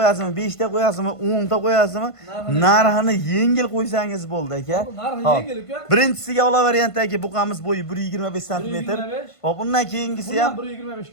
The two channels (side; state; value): right; late; 1.5 ms